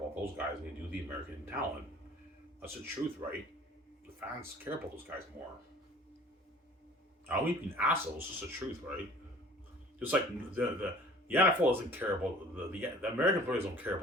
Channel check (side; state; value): both; normal; correlation 0.49